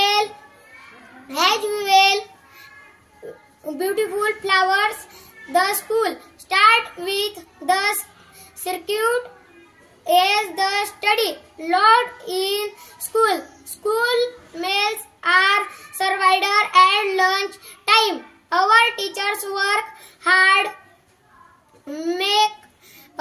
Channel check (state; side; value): identical; both; correlation 1.00